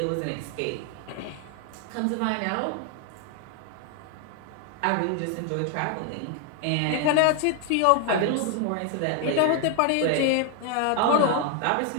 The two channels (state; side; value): different; both; correlation 0.00